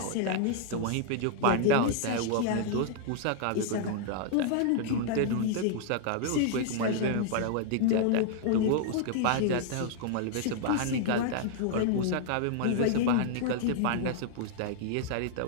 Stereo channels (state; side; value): different; both; correlation -0.01